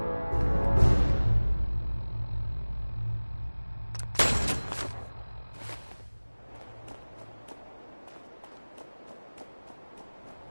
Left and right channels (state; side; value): inverted; both; correlation -1.00